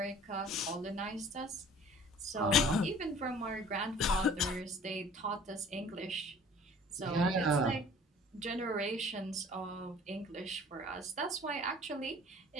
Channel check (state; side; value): normal; both; correlation 0.49